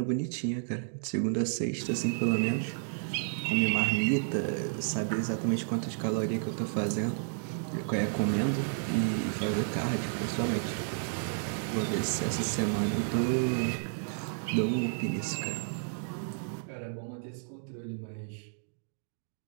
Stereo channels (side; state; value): left; silent; digital silence